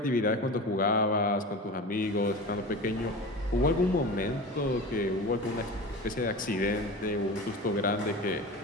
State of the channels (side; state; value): both; normal; correlation 0.31